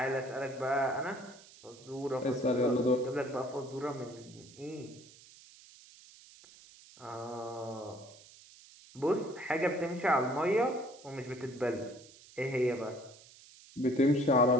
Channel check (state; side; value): noise; right; hiss, 22 dB below the sound